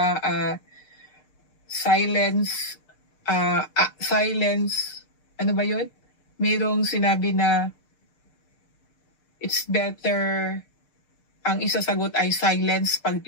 silence, ano ba yun? Mayroong sinabi na it's better, ang isasagot ay silence pag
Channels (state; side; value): late; right; 6.7 ms